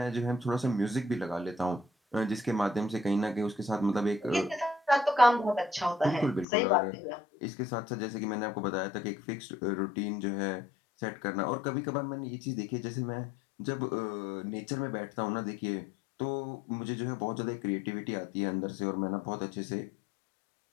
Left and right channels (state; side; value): drops out; right; at 6.5 s